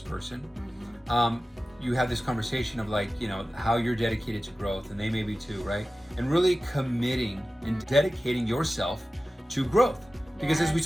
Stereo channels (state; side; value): normal; both; correlation 0.95